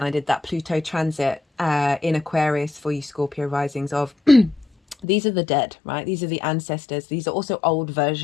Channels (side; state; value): right; drops out; at 5.1 s